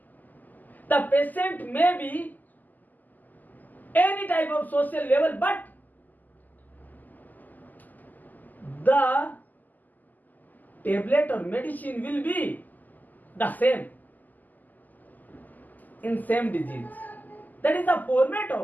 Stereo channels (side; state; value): right; late; 0.083 ms